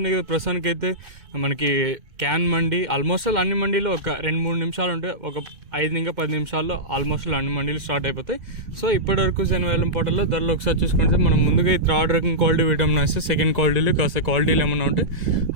కదా, ప్రస్తుతానికి అయితే మనకి క్యాన్ మండి ఆల్మోస్ట్ అన్ని మండీలో ఒక 2-3 నిమిషాలు ఉంటే ఒక 5-10 నిమిషాల్లో ఆల్మోస్ట్ అన్ని మండీలు స్టార్ట్ అయిపోతాయి. సో ఇప్పటివరకు జనవేలం పోటల్లో ధరలు ఒకసారి చూసుకుంటే మనం ముందుగా థర్డ్ రకం క్వాలిటీ విటమిన్ వస్తే సెకండ్ క్వాలిటీలు కాస్త క్వాలిటీలు ఏమన్నా ఉంటే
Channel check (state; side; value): late; left; 2.2 ms